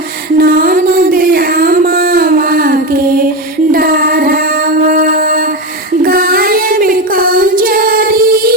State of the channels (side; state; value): both; normal; correlation 0.17